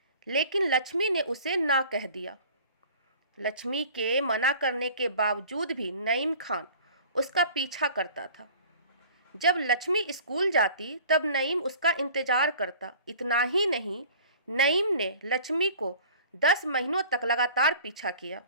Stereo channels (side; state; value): both; inverted; correlation -0.46